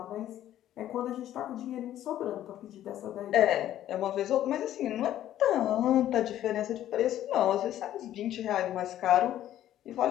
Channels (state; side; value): quieter; right; 12.3 dB